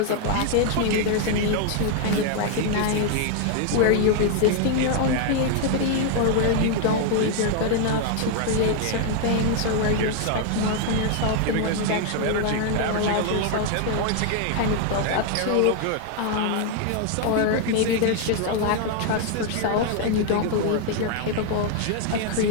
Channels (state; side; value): different; both; correlation 0.00